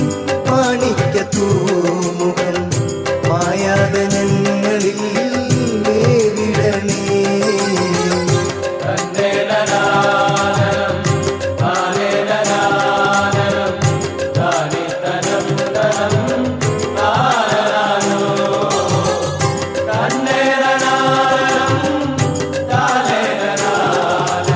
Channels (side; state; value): both; identical; correlation 1.00